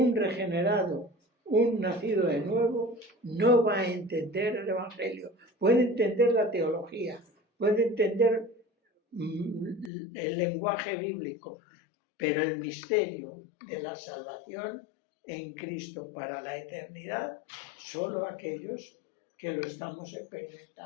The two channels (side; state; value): right; drops out; at 9.9 s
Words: regenerado, un nacido de nuevo, no va a entender el Evangelio. Puede entender la teología, puede entender el lenguaje bíblico, pero el misterio de la salvación en Cristo para la eternidad, solo aquellos que lo estamos